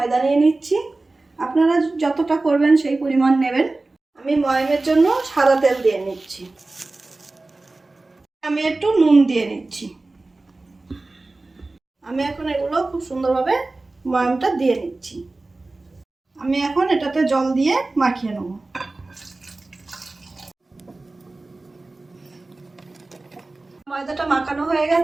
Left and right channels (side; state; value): left; quieter; 3.2 dB